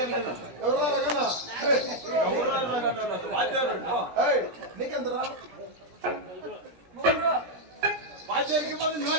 ఎవరా రగనా నీకెంతరా వాచేరికి పోతే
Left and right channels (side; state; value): left; late; 17 ms